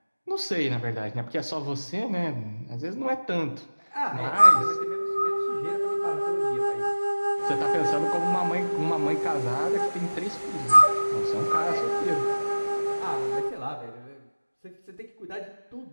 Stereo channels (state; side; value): inverted; both; correlation -1.00